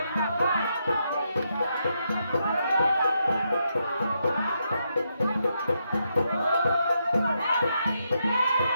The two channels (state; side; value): inverted; both; correlation -0.81